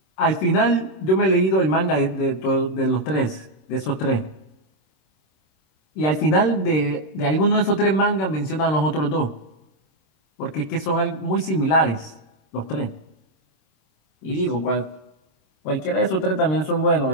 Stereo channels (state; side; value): late; right; 26 ms